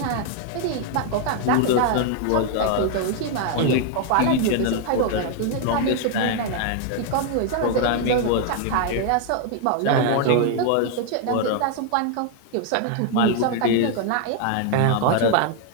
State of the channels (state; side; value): different; both; correlation 0.00